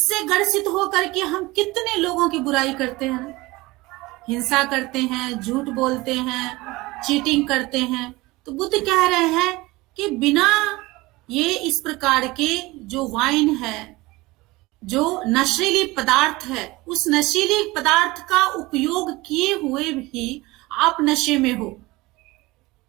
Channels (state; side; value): quieter; left; 21.1 dB